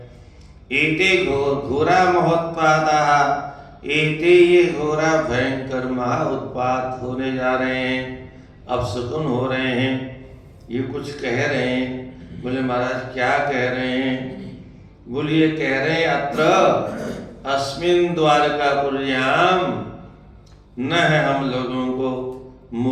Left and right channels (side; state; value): both; identical; correlation 1.00